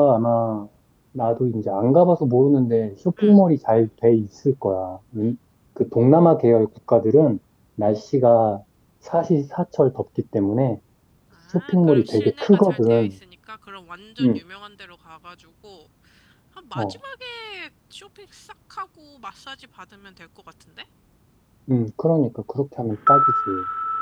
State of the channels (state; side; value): identical; both; correlation 1.00